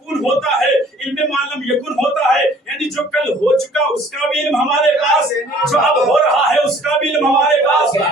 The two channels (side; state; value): both; normal; correlation 0.55